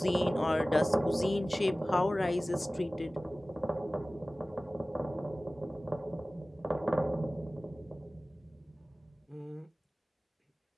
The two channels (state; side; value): normal; both; correlation 0.97